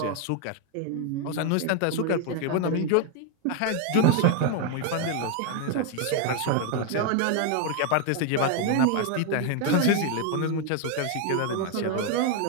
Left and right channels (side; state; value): both; different; correlation 0.01